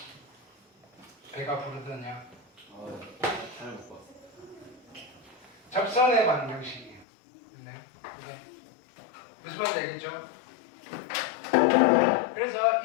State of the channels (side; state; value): right; drops out; at 7.1 s